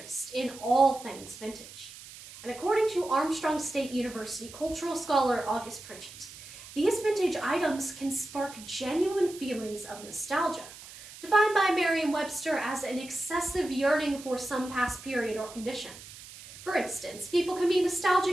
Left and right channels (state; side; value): noise; right; hiss, 16 dB below the sound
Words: in all things vintage. And according to Armstrong State University cultural scholar August Pritchett, these vintage items can spark genuine feelings of nostalgia, defined by Merriam-Webster as an excessive yearning for some past period or condition. For instance, people can be